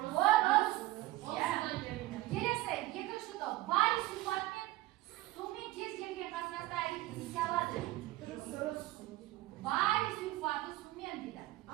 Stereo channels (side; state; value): left; quieter; 17.6 dB